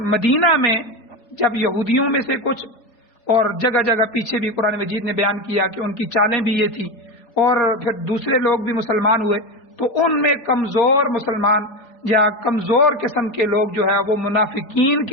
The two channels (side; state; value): right; late; 4.2 ms